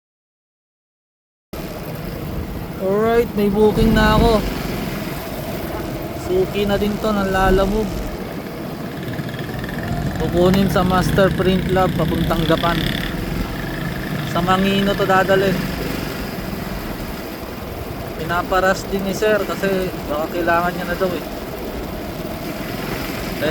Alright, may booking na ako. Suki na din to ng Lalamove. Kukunin sa Master Print Lab papuntang Gapan. Sa Mangino to dadalhin. Pinaparas din ni sir kasi baka kailangan niya na daw eh.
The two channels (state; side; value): identical; both; correlation 1.00